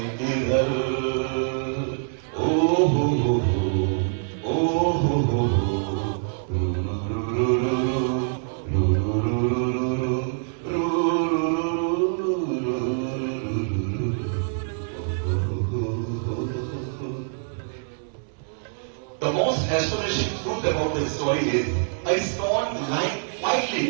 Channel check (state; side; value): silent; left; 62 dB below the other